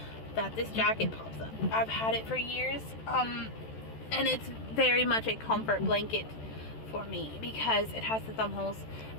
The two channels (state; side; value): late; right; 14 ms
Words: that this jacket pops up. I've had it for years, and it's very much a comfort blanket for me because it has the thumb holes,